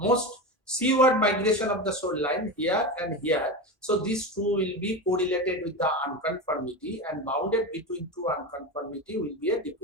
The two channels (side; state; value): both; normal; correlation 0.21